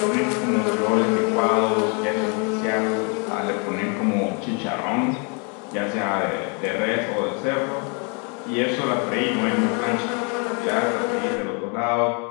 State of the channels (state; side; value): quieter; right; 36.0 dB